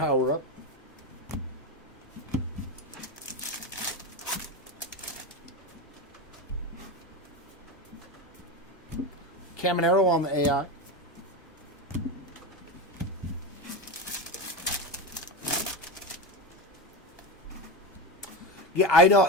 Caminero on the AI. Yeah, I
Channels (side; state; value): both; normal; correlation 0.18